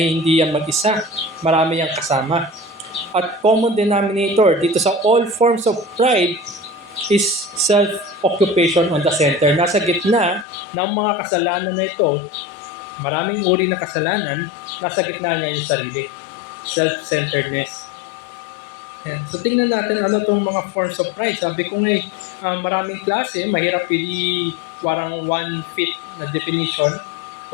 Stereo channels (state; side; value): drops out; right; at 10.5 s